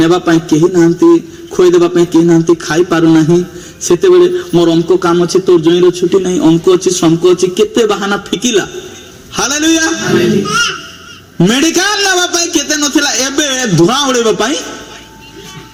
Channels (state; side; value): identical; both; correlation 1.00